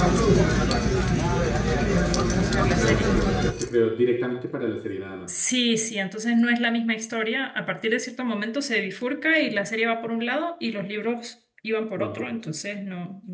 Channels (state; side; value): identical; both; correlation 1.00